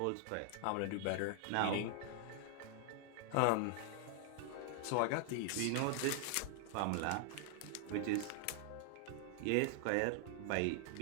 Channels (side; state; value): both; different; correlation 0.00